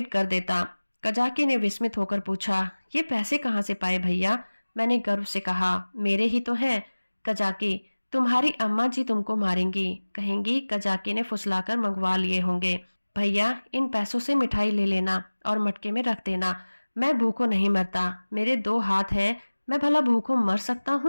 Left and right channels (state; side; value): inverted; both; correlation -1.00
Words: कर देता। कजाकी ने विस्मित होकर पूछा, ये पैसे कहाँ से पाए भैया? मैंने गर्व से कहा, मेरे ही तो हैं। कजाकी, तुम्हारी अम्मा जी तुमको मारेंगी, कहेंगी कजाकी ने फुसलाकर मंगवा लिए होंगे। भैया इन पैसों से मिठाई ले लेना और मटके में रख देना। मैं भूखों नहीं मरता, मेरे 2 हाथ हैं, मैं भला भूखों मर सकता